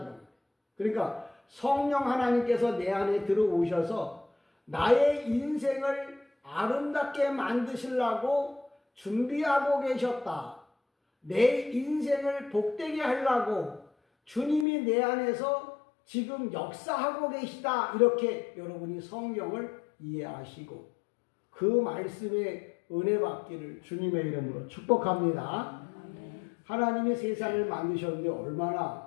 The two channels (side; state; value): right; drops out; at 14.7 s